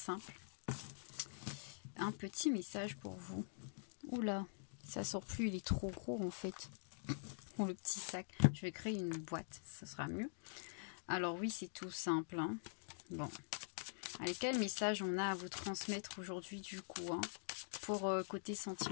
Un petit message pour vous. Oula, ça sort plus, il est trop gros en fait. Le petit sac, je vais créer une boîte, ce sera mieux. Alors oui, c'est tout simple. Hein. Bon, allez, quel message on a à vous transmettre aujourd'hui du coup hein, pour côté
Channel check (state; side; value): silent; right; digital silence